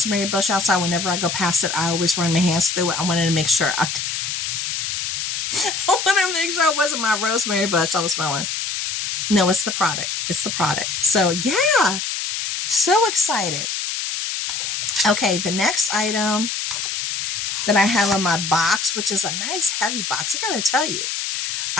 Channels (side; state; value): left; noise; hiss, 3 dB below the sound